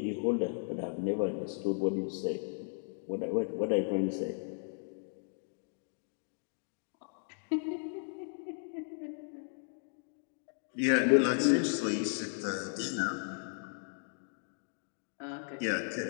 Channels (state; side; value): silent; right; digital silence